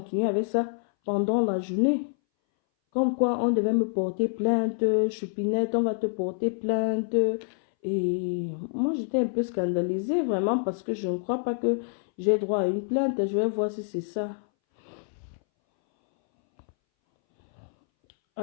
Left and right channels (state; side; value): silent; right; 60 dB below the other